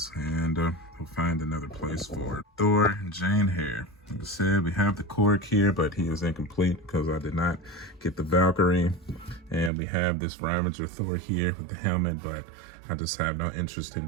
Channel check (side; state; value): left; drops out; at 9.7 s